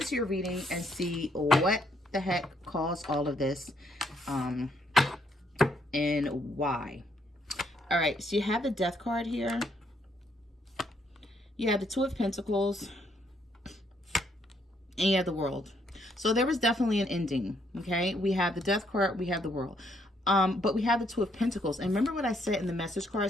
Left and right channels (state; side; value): normal; both; correlation 0.72